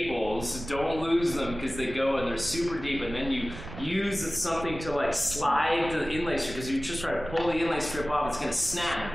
don't lose them because they go and they're super deep, and then you use something to like slide the inlay strip, because you just try to pull the inlay strip off, it's gonna snap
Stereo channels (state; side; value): noise; right; rumble, 12 dB below the sound